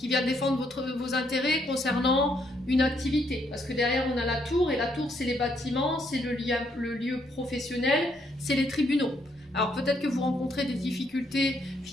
vient défendre vos intérêts concernant une activité. Parce que derrière, on a la tour, et la tour, c'est les bâtiments, c'est le lieu professionnel, c'est les tribunaux. Alors peut-être que vous rencontrez des difficultés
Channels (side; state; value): both; normal; correlation 0.73